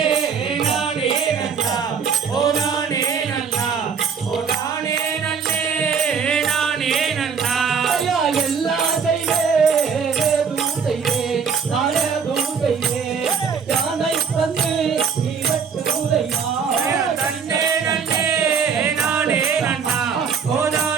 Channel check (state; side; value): quieter; left; 6.3 dB